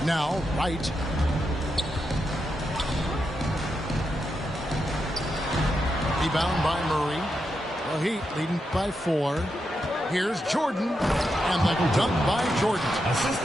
Now, Wright. Rebound by Murray. The Heat leading by 4. Here's Jordan. And the dunk by Jordan. Assist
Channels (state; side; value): normal; both; correlation 0.85